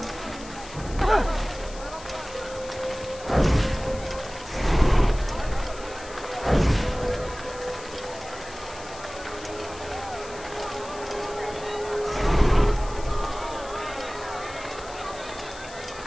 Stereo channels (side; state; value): left; noise; hiss, 17 dB below the sound